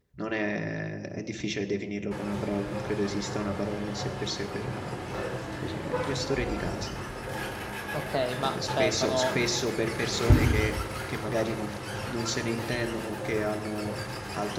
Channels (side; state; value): both; identical; correlation 1.00